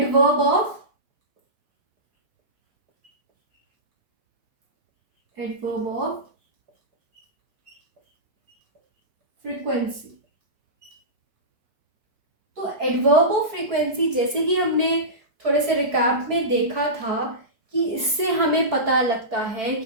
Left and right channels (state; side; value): late; left; 4.9 ms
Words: of adverb of frequency. तो एडवर्ब ऑफ फ्रीक्वेंसी जैसे कि हमने थोड़े से रिकैप में देखा था कि इससे हमें पता लगता है